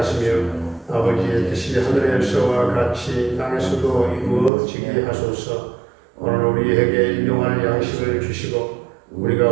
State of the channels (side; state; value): left; drops out; at 4.5 s